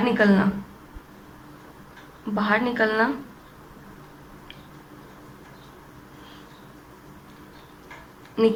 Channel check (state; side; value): identical; both; correlation 1.00